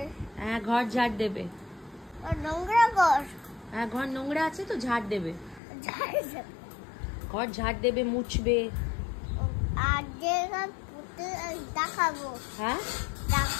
হ্যাঁ ঘর ঝাড় দেবে। নোংরা ঘর। হ্যাঁ ঘর নোংরা আছে তো ঝাড় দেবে। ঝাড়বে। ঘর ঝাড় দেবে, মুছবে। আর দেখাবো। হ্যাঁ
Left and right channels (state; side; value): drops out; right; at 5.6 s